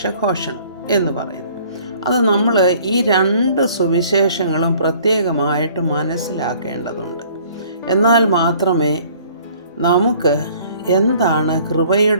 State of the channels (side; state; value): both; inverted; correlation -0.55